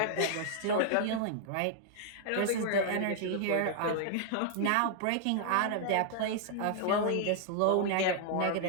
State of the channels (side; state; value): both; different; correlation -0.01